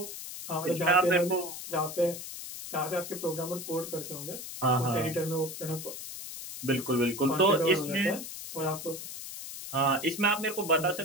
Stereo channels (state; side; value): noise; left; hiss, 9 dB below the sound